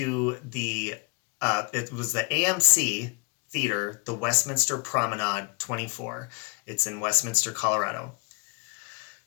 it was the AMC Theater, the Westminster Promenade 24. It's in Westminster, Colorado.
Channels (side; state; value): right; quieter; 32.2 dB